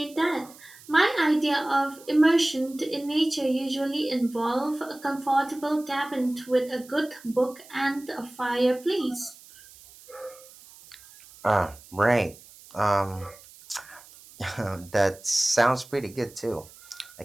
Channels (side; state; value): right; noise; hiss, 22 dB below the sound